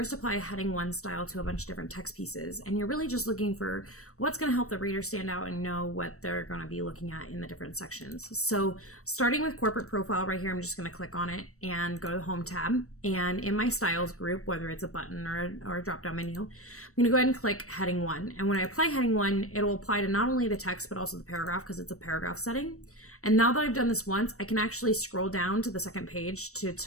apply a heading 1 style to a bunch of different text pieces. And you're really just looking for what's going to help the reader stand out and know what they're going to be looking at in the different sections. So starting with corporate profile right here, I'm just going to click on it and go to the home tab. And in my styles group, whether it's a button or a drop-down menu, I'm going to go ahead and click heading 1. And when I apply heading 1, it will apply to not only the text, but also the paragraph because it's a paragraph setting. And now that I've done this once, I can actually scroll down to the second page to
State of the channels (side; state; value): right; late; 0.65 ms